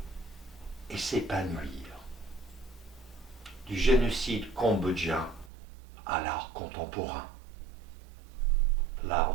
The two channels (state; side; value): drops out; left; at 5.5 s